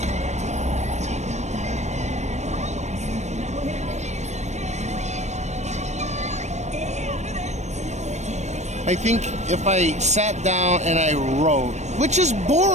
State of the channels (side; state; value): left; late; 0.33 ms